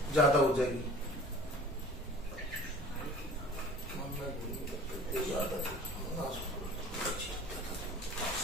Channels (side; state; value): both; normal; correlation 0.45